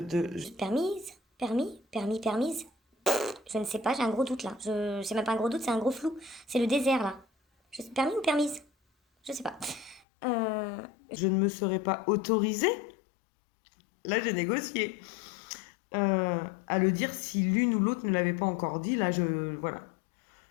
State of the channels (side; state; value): right; drops out; at 10.1 s